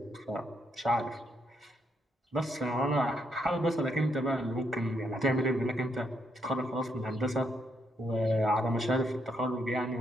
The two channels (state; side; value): normal; both; correlation 0.76